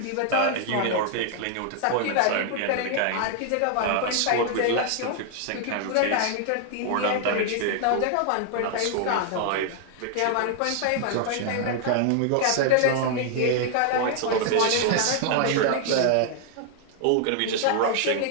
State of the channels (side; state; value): both; different; correlation 0.00